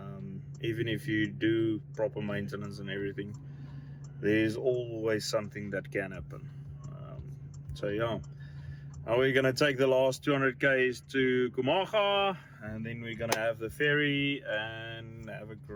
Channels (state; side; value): identical; both; correlation 1.00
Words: Even if you do proper maintenance and everything, there's always something that can happen. So yeah, now we're gonna take the last 200 k's to Khwai, and then we're gonna have the ferry and have a